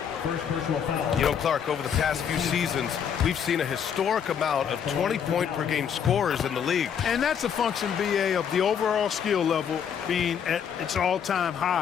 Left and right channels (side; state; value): right; quieter; 7.9 dB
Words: First personal foul. You know, Clark, over the past few seasons, we've seen a historic amount of 20-point-per-game scorers in the league. And that's a function, BA, of the overall skill level being at its all-time